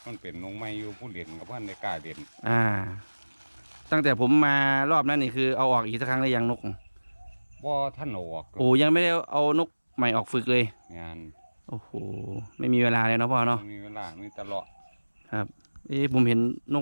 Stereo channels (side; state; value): both; inverted; correlation -1.00